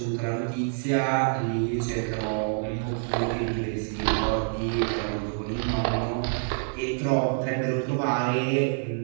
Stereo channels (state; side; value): silent; left; 60 dB below the other